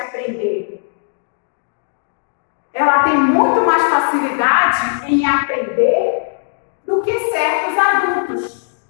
Ela tem muito mais facilidade em aprender do que certos adultos.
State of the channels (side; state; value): right; silent; digital silence